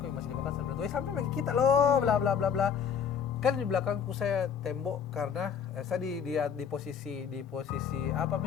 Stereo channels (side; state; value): right; quieter; 7.4 dB